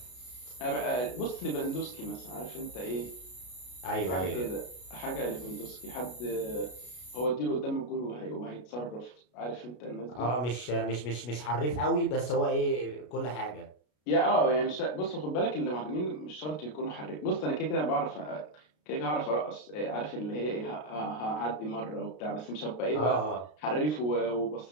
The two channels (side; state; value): right; late; 33 ms